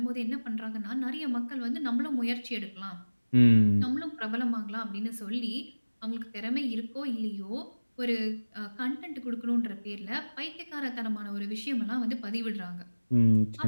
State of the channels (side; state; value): both; inverted; correlation -1.00